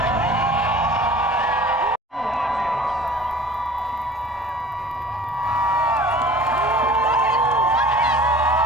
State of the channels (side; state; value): both; normal; correlation 0.46